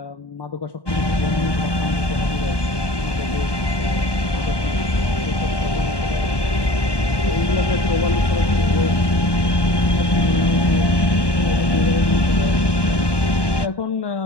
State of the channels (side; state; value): right; late; 1.2 ms